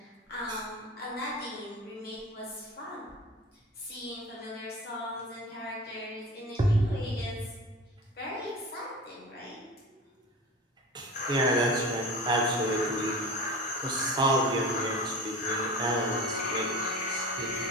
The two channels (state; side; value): normal; both; correlation 0.33